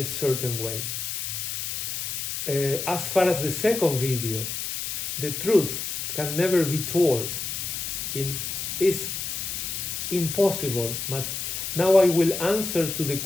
certain way. As far as the second video, the truth can never be told. It's impossible. But now I will answer to the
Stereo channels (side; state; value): left; noise; hiss, 4 dB below the sound